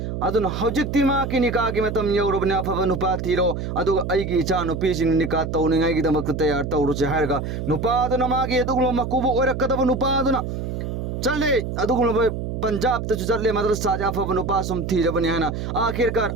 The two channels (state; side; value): noise; right; hum, 4 dB below the sound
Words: अदुना हौजिक्ति माकी निकागी मतम यौरबने अफब नुपा थीरो अदुगा अइगी इचा नुपीसि निका तौनिंगाइगिदमक तैयार तौरुसे हारगा नुपादुना मागी अदुगुम मकुबु ओरकदब नुपादुना चले अदुगुम पंजाब तु चले मदरसा जाफब नुपा सुम थीरबने हना आखिरकार